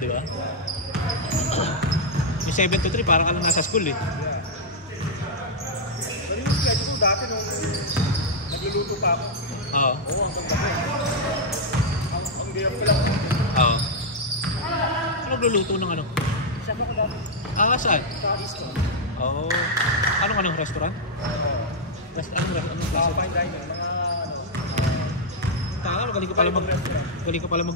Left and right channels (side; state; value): both; normal; correlation -0.02